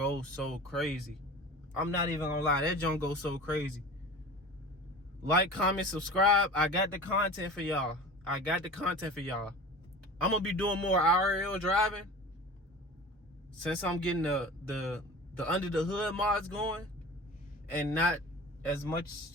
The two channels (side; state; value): both; normal; correlation 0.37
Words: so crazy. I'm not even gonna lie. That joint goes so crazy. Like, comment, subscribe. I got the content for y'all. I'm gonna be doing more IRL driving since I'm getting the under the hood mods going and not as